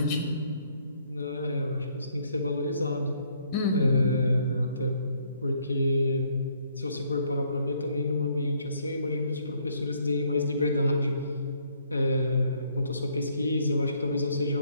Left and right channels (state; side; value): inverted; both; correlation -0.67